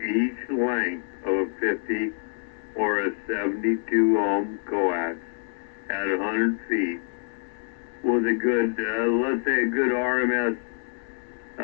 each length of a 50 or a 72 ohm coax at 100 feet with a good, let's say a good RMS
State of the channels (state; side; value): silent; right; digital silence